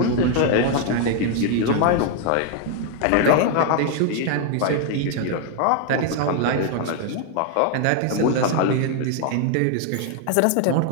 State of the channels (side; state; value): both; different; correlation 0.00